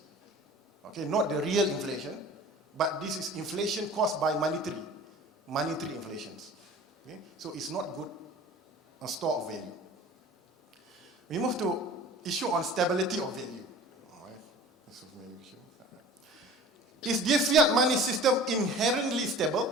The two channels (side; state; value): both; normal; correlation 0.43